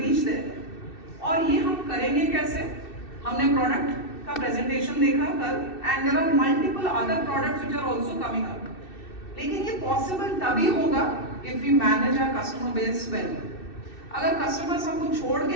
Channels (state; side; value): late; right; 2.6 ms